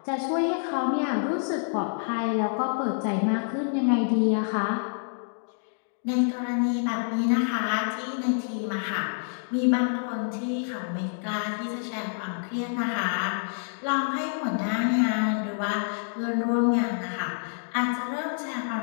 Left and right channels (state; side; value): silent; right; digital silence